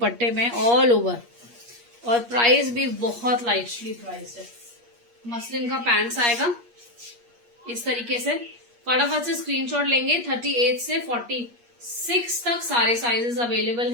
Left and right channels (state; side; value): late; left; 8.5 ms